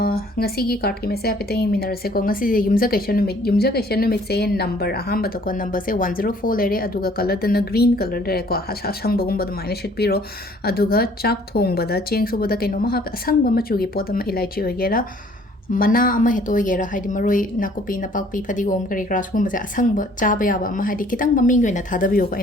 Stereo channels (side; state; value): both; normal; correlation 0.58